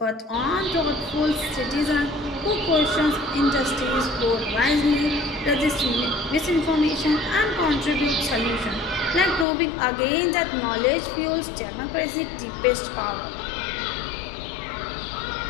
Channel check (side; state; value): right; drops out; at 9.5 s